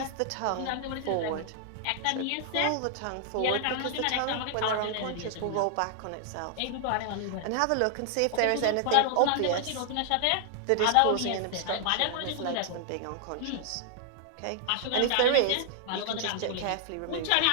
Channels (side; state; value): both; different; correlation 0.00